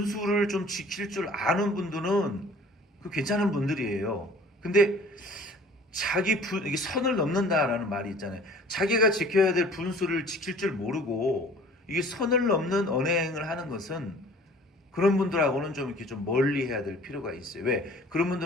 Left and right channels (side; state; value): both; normal; correlation 0.49